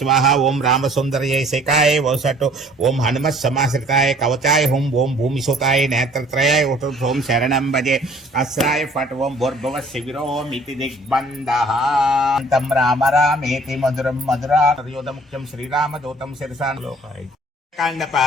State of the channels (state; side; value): normal; both; correlation 0.55